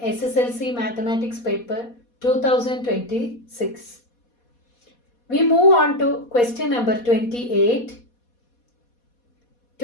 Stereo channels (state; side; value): late; right; 4.2 ms